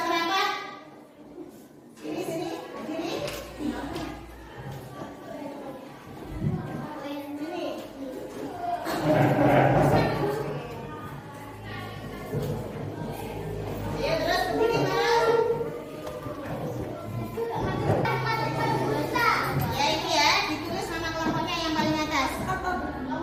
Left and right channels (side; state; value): both; identical; correlation 1.00